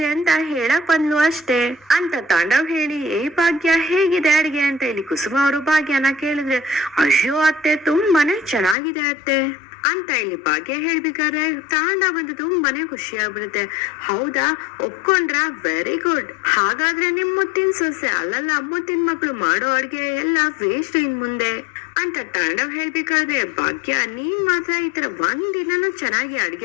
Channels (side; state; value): right; drops out; at 8.8 s